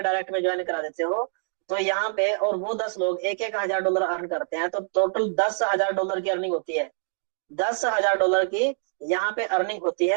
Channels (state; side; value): silent; left; digital silence